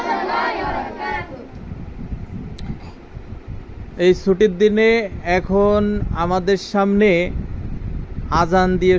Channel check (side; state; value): both; identical; correlation 1.00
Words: এই ছুটির দিনে এখন আমাদের সামনে আজান দিয়ে